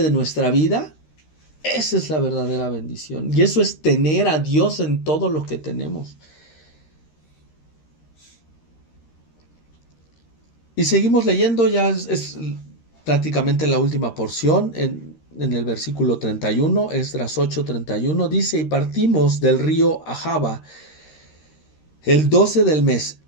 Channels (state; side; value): late; right; 13 ms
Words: de nuestra vida. Esa es la verdadera bendición. Y eso es tener a Dios en todo lo que tenemos. Y seguimos leyendo, ya es prácticamente la última porción, en el versículo 31, Esdras 8:31, dice: y partimos del río Ahava el 12 del mes,